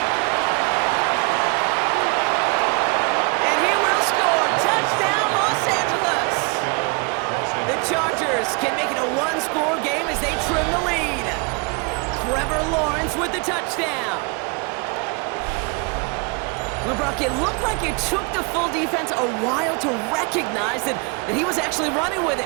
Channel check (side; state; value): left; quieter; 32.2 dB